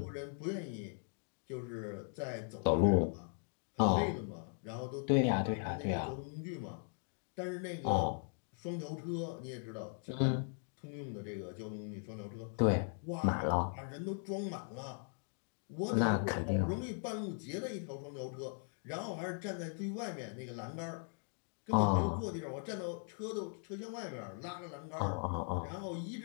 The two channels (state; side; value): silent; right; 52 dB below the other